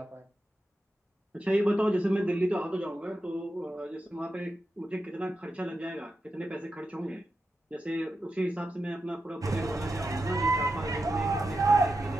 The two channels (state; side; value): normal; both; correlation 0.89